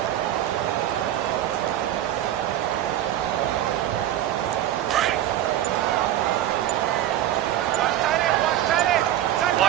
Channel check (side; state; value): left; quieter; 12.4 dB